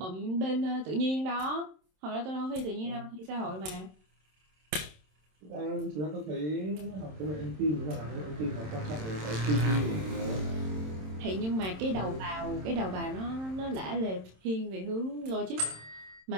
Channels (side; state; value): left; late; 27 ms